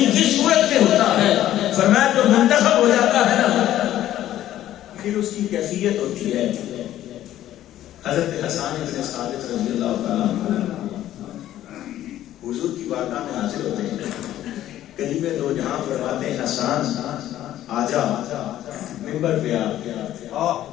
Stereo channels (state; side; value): quieter; right; 12.9 dB